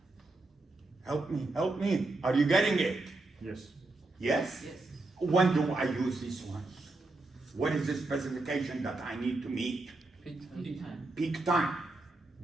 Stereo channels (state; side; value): quieter; left; 3.1 dB